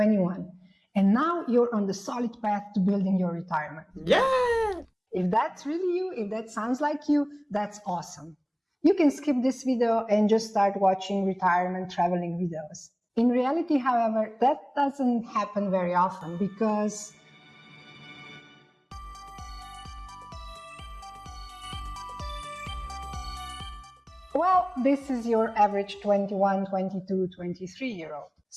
and now you're on the solid path to building your retirement. Yeah! If that's really you, if that sounds like you, that's awesome. You can skip this video and just start watching retirement traveling videos. In reality, however, that doesn't happen very often because well, this is your average 21, 22, 23-year-old.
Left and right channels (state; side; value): identical; both; correlation 1.00